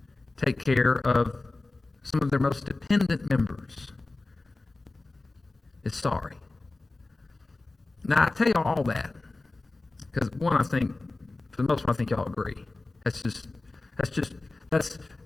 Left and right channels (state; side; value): quieter; right; 3.2 dB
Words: take care of some of their most dependent members is sorry. Now, I tell you all that because one, I think for the most part, I think y'all agree. That's